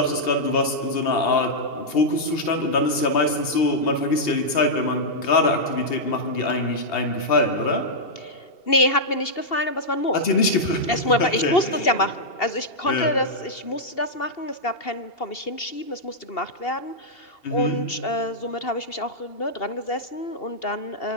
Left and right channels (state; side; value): late; right; 2.8 ms